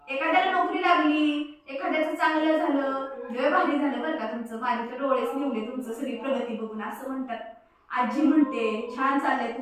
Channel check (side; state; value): both; identical; correlation 1.00